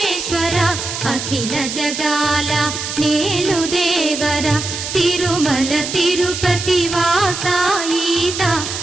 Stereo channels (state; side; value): noise; right; hiss, 6 dB below the sound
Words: అఖిల జగాల నేలు దేవర తిరుమల తిరుపతి వాస ఈస